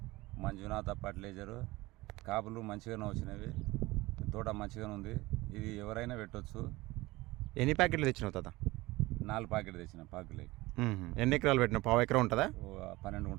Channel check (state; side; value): quieter; left; 20.3 dB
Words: మంజునాథ ఫర్టిలైజరు కాపులు మంచిగానే వచ్చినవి, తోట మంచిగానే ఉంది. ఇది ఎవరైనా పెట్టవచ్చు. ఎన్ని ప్యాకెట్లు తెచ్చినావు తాత? 4 ప్యాకెట్లు తెచ్చిన పాకులకి. ఎన్ని ఎకరాలు పెట్టినావు? పావు ఎకరం ఉంటుందా? 12